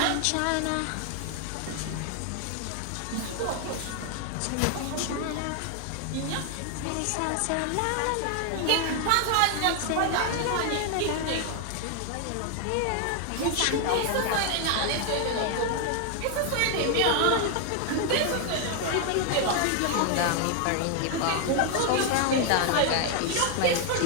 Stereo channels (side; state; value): both; different; correlation 0.00